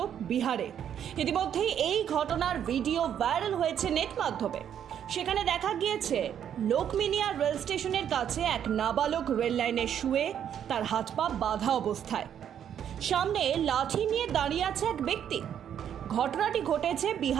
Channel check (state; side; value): quieter; left; 9.3 dB